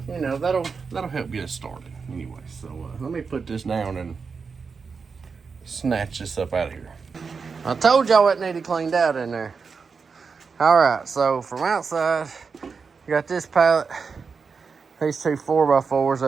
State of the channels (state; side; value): quieter; left; 5.2 dB